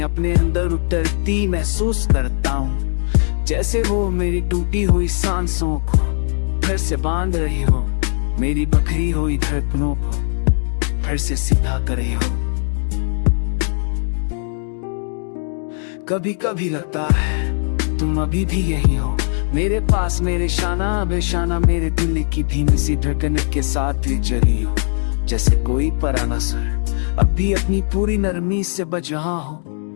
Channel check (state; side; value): silent; right; 57 dB below the other